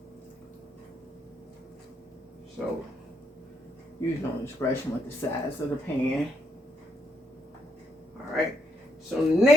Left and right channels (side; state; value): both; normal; correlation 0.78